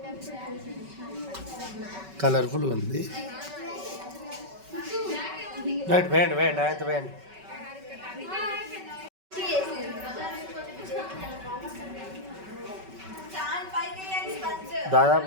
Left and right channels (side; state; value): left; late; 5.3 ms